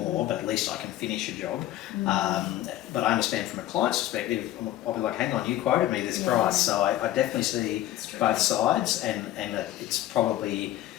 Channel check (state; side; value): quieter; right; 13.9 dB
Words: but at least I can finish your job. But I understand from a client's perspective, I'll be like, hang on, you quoted me this price. So I definitely see both sides, and it's probably